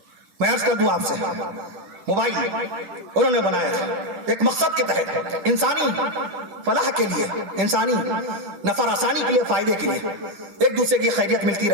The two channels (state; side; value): late; left; 10 ms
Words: میں عرض کر دوں آپ سے, موبائل انہوں نے بنایا تھا ایک مقصد کے تحت, انسانی فلاح کے لیے, انسانی نفع آسانی کے لیے, فائدے کے لیے, ایک دوسرے کی خیریت ملتی